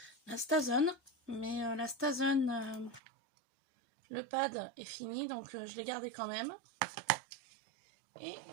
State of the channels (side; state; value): left; drops out; at 3.0 s